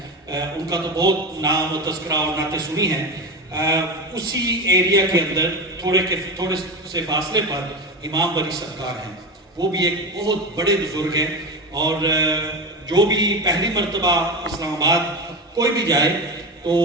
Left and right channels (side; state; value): both; normal; correlation 0.21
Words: ان کا تو بہت نام و تذکرہ اور نعتیں سنی ہیں، اسی ایریا کے اندر تھوڑے سے فاصلے پر امام بری سرکار ہیں، وہ بھی ایک بہت بڑے بزرگ ہیں، اور جو بھی پہلی مرتبہ اسلام آباد کوئی بھی جائے تو